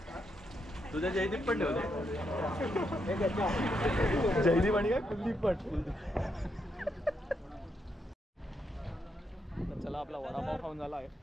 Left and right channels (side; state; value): both; normal; correlation 0.80